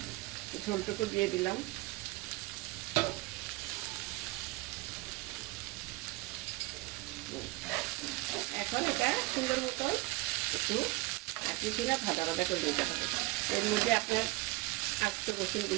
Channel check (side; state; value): left; quieter; 21.7 dB